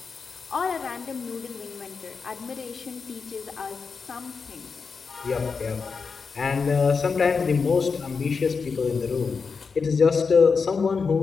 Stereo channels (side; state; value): right; quieter; 5.2 dB